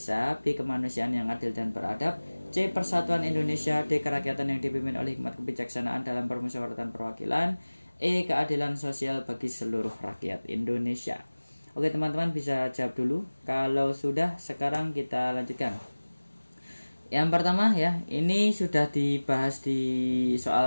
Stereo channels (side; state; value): both; inverted; correlation -1.00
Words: B. Kemanusiaan yang adil dan beradab, C. Persatuan Indonesia, D. Kerakyatan yang dipimpin oleh hikmat kebijaksanaan dalam permusyawaratan perwakilan, E. Keadilan sosial bagi seluruh rakyat Indonesia. Oke teman-teman, bisa jawab dulu. Kalau sudah, sekarang kita lanjutkan. Yang pertama ya, ini sudah dibahas di